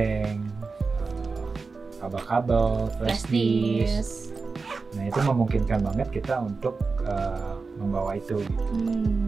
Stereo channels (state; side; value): quieter; left; 4.3 dB